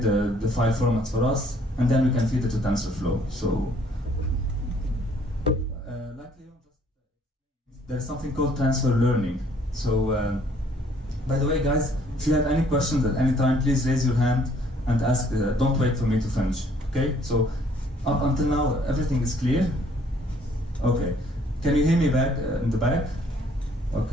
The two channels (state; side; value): normal; both; correlation 0.62